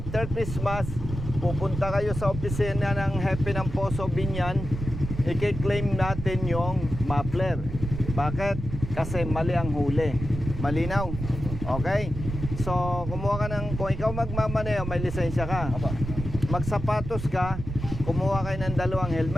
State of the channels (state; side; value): noise; right; rumble, 7 dB below the sound